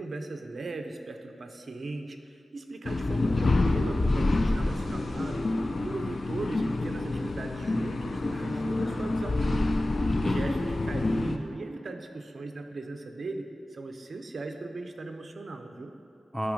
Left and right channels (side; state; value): both; normal; correlation 0.95